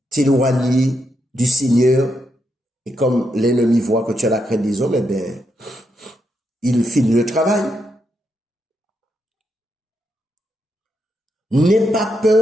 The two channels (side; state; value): both; normal; correlation 0.81